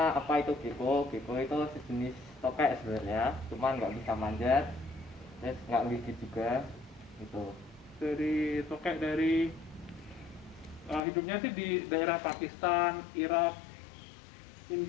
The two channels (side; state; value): right; drops out; at 11.0 s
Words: apa itu gecko? Gecko itu sejenis tokek sebenarnya, cuman nggak bisa manjat, terus nggak gigit juga, gitu. Dari tokek dari hidupnya sih di daerah Pakistan, Irak,